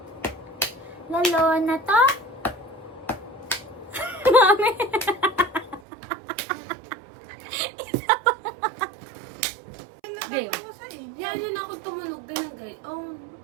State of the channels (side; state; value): left; drops out; at 5.8 s